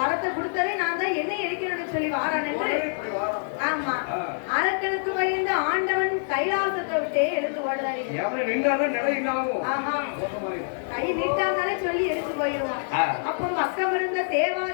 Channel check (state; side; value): silent; right; digital silence